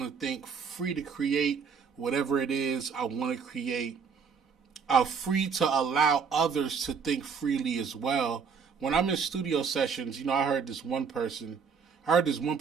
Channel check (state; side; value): quieter; left; 6.1 dB